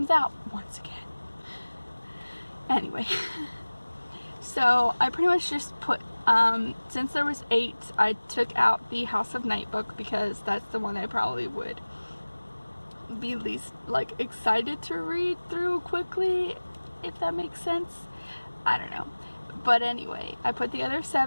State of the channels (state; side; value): inverted; both; correlation -1.00